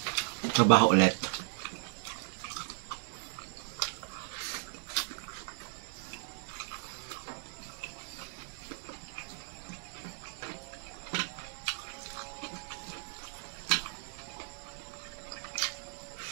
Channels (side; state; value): left; silent; 54 dB below the other